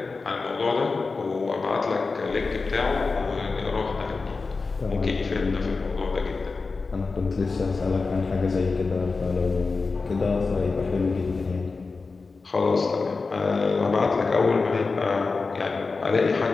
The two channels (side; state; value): right; quieter; 4.1 dB